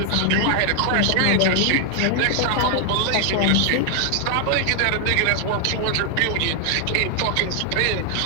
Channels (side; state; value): both; different; correlation 0.00